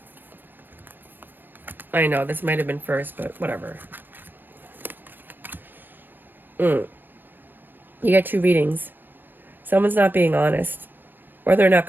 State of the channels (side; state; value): left; late; 0.093 ms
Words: I know, this might have been first, but whatever. You got two readings. Someone's not being honest, or they're not